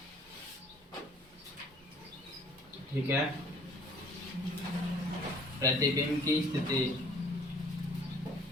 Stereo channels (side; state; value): both; normal; correlation 0.55